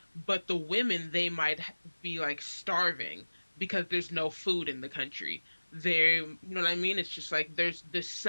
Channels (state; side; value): inverted; both; correlation -1.00